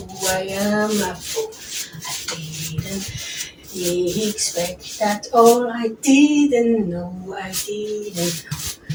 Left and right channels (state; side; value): identical; both; correlation 1.00